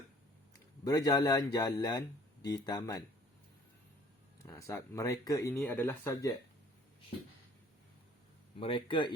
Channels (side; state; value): both; normal; correlation 0.54